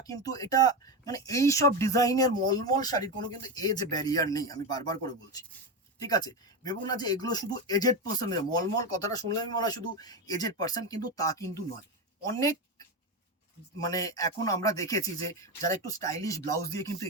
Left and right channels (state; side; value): normal; both; correlation 0.15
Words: কিন্তু এটা মানে এই সব ডিজাইনের মলমল শাড়ির কোনো কিন্তু এজ ব্যারিয়ার নেই, আমি বারবার করে বলছি, ঠিক আছে। ভেবো না যে এগুলো শুধু এজেড পার্সনের, মলমল কথাটা শুনলে আমি মনে হয় শুধু এজেড পার্সন, কিন্তু তা কিন্তু নয়। অনেক মানে এখন আমরা দেখেছি যে যারা একটু স্টাইলিশ ব্লাউজ দিয়ে কিন্তু